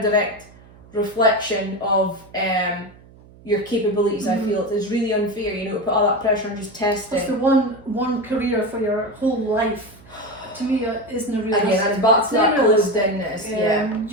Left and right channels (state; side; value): noise; right; hum, 24 dB below the sound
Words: direct reflection of your capabilities. I feel it's really unfair, to put all that pressure on just testing. It's the one career for your whole life. To me, isn't a realistic. Again, and back to that closed-inness.